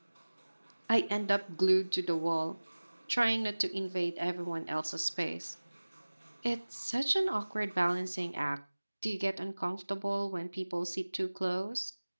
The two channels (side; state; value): both; inverted; correlation -1.00